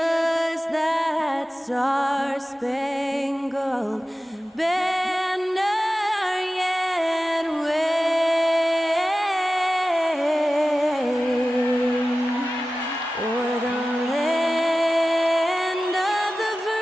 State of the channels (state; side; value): normal; both; correlation 0.95